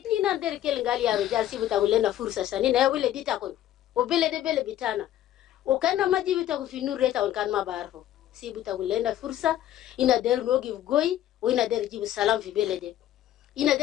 na der kel ngali ya rujal sibuta ulena fursa sani na wile ditakon. O bele de bele bitana. O kana majibi ta kufinur reta on kan mabarfo. Sibuta ulena fursa ina der no give goy o ina der jibu salam fi bele de. Ina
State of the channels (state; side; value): quieter; right; 12.4 dB